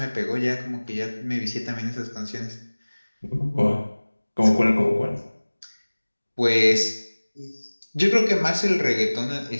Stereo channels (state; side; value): inverted; both; correlation -1.00